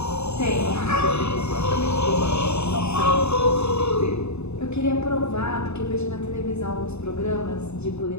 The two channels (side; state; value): right; late; 0.81 ms